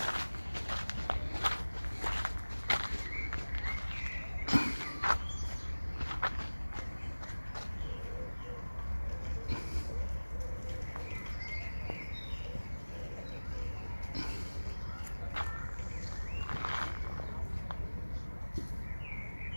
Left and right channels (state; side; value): inverted; both; correlation -1.00